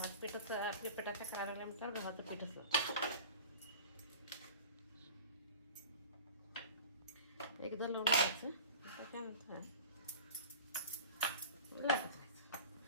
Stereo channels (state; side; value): inverted; both; correlation -0.38